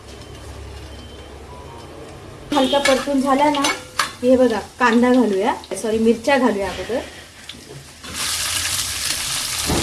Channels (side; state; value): both; identical; correlation 1.00